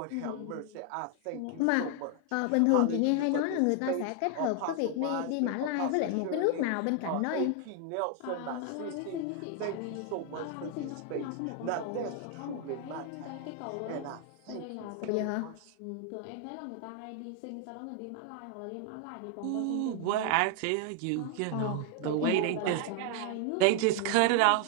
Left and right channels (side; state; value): both; different; correlation 0.00